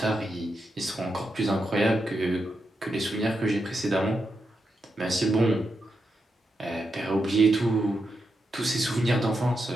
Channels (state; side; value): normal; both; correlation 0.85